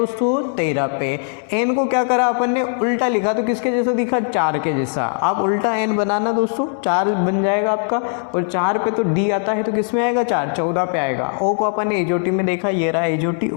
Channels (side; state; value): right; silent; 61 dB below the other